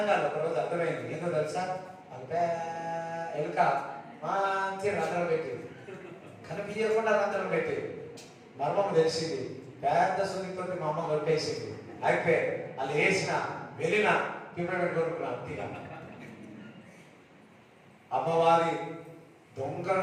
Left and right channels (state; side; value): identical; both; correlation 1.00